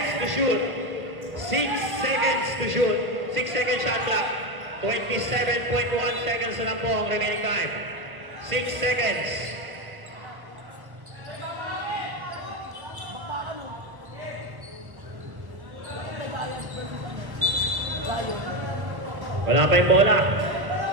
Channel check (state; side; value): late; left; 1.2 ms